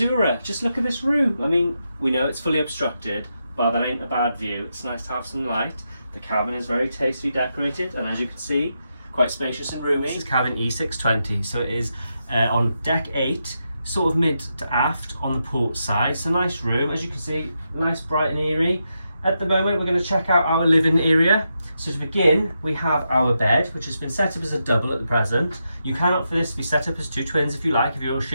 Just look at this room. I mean, we know it's fully obstructed, but that ain't a bad view. It's nice to have some light. The cabin is very tastefully decorated, and as you can see, quite spacious and roomy. This is cabin E620, so it is on deck 8, sort of mid to aft on the port side. It's a nice room, as you can see, nice, bright and airy. At the moment, we're going to check out our living area. So to begin, we have our bed, which has been set up as a double at the present. You can opt for this to be set up as 2 twins if you like, if you're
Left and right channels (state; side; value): inverted; both; correlation -0.85